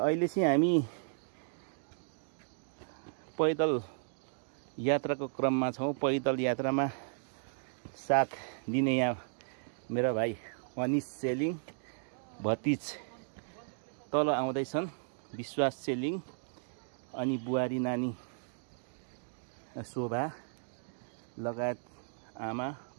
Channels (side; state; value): left; silent; digital silence